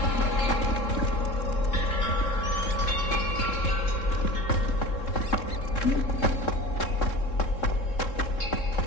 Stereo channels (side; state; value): right; late; 3.7 ms